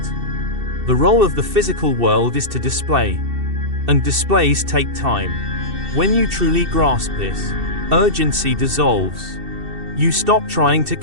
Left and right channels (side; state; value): left; late; 2.7 ms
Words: The role of the physical world is to display. And displays take time. When you truly grasp this, urgency dissolves. You stop trying to